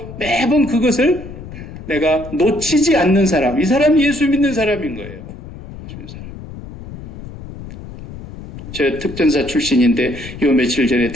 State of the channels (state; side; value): noise; left; rumble, 13 dB below the sound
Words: 매번 그것을 내가 놓치지 않는 사람. 이 사람이 예수 믿는 사람인 거예요. 저 특전사 출신인데 요 며칠 전에